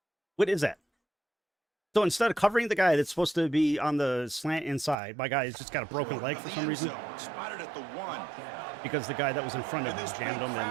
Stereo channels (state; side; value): drops out; left; at 5.0 s